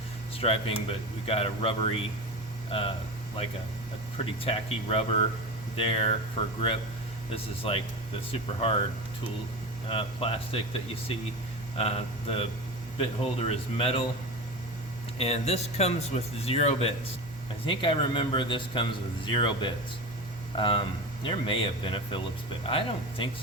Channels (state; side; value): normal; both; correlation 0.26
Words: striping, but we got a rubbery, like a pretty tacky rubber there for grip. This is like the super hard tool plastic that you see. The bit holder is metal, and this comes with 0 bits. I think I remember this comes with 0 bits. There may have been a Phillips bit. I don't think